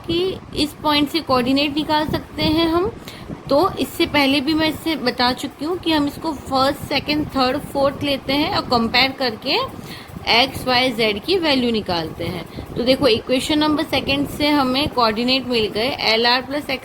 इस पॉइंट से कोऑर्डिनेट निकाल सकते हैं हम, तो इससे पहले भी मैं इससे बता चुकी हूँ कि हम इसको फर्स्ट सेकंड थर्ड फोर्थ लेते हैं और कंपेयर करके एक्स वाई जेड की वैल्यू निकालते हैं। तो देखो इक्वेशन नंबर सेकंड से हमें कोऑर्डिनेट मिल गए एल आर प्लस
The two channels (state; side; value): identical; both; correlation 1.00